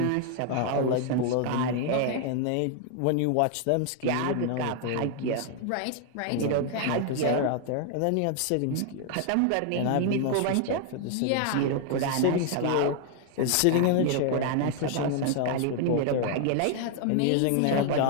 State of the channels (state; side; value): different; both; correlation 0.00